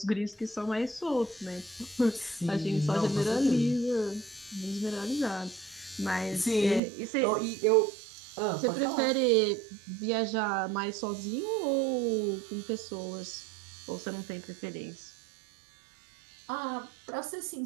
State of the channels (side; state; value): left; drops out; at 6.8 s